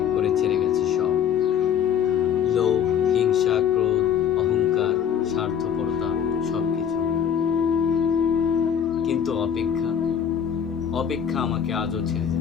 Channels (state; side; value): quieter; right; 8.5 dB